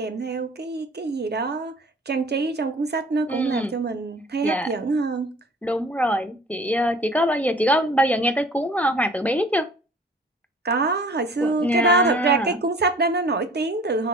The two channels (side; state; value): both; normal; correlation 0.49